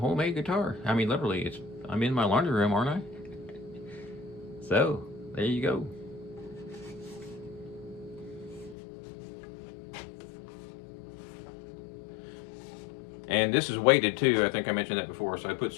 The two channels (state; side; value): drops out; right; at 8.8 s